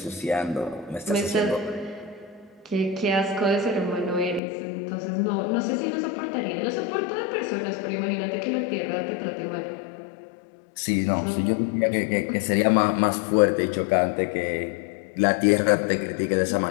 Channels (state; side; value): drops out; right; at 4.4 s